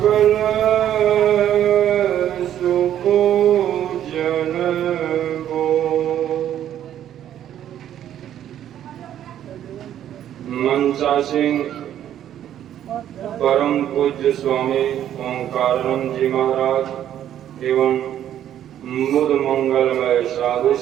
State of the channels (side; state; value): left; quieter; 10.9 dB